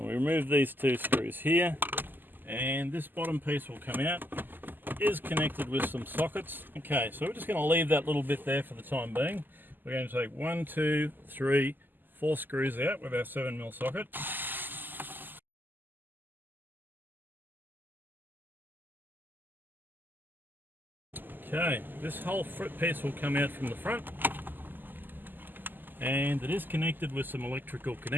we remove these two screws here, and this bottom piece will come out. It is connected with some sockets. Okay, so we're just going to leave that little bit there for the time being. We're going to take 1, 2, 3, 4 screws out with our 7mm socket. Okay, this whole piece will come out from the front, and it is connected with some electrical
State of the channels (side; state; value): left; late; 0.089 ms